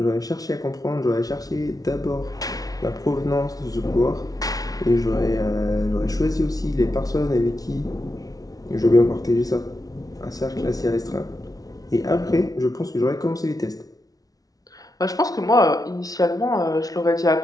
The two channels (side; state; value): right; late; 0.18 ms